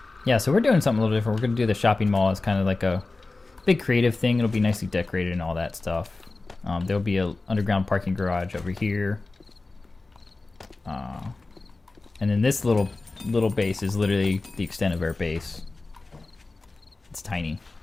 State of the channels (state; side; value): quieter; right; 3.4 dB